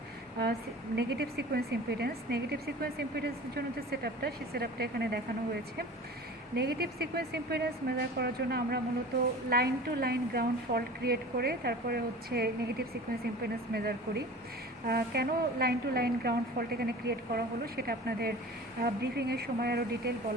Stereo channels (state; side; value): normal; both; correlation 0.39